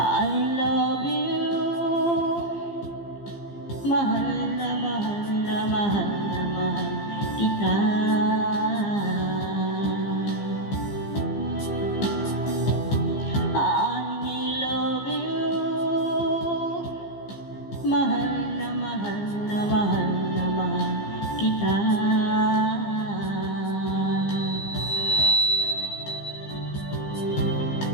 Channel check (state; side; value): late; right; 15 ms